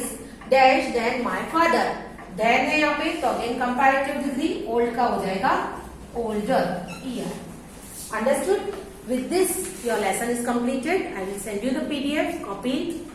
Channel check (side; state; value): both; identical; correlation 1.00